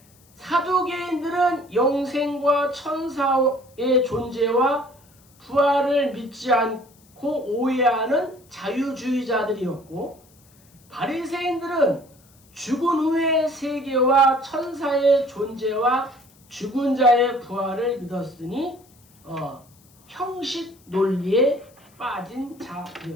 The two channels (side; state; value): left; noise; hiss, 30 dB below the sound